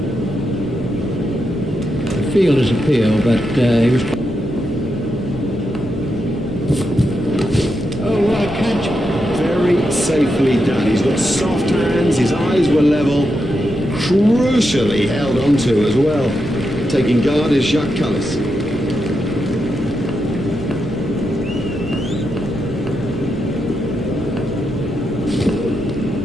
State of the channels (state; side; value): normal; both; correlation 0.85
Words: The fielder's appeal, but he was... Oh, what a catch. Very safely done. He's got soft hands, his eyes were level, crucially held onto as well. Taking guard is Jacques Cullis.